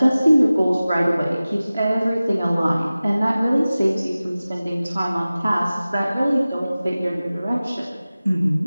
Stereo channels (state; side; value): inverted; both; correlation -0.97